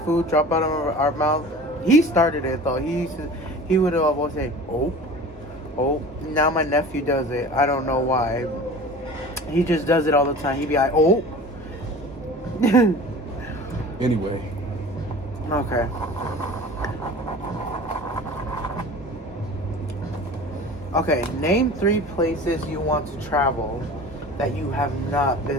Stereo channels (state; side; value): normal; both; correlation 0.40